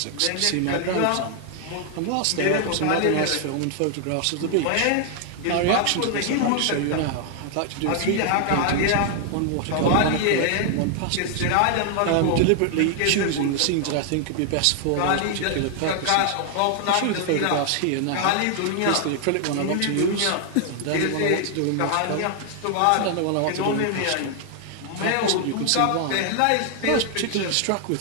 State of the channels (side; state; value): both; different; correlation 0.00